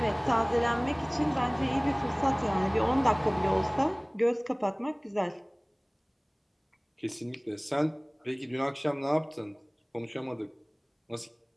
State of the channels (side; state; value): both; identical; correlation 1.00